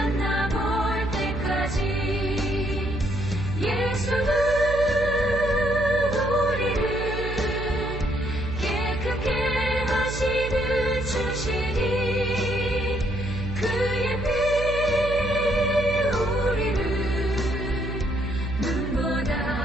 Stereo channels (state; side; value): noise; right; hum, 6 dB below the sound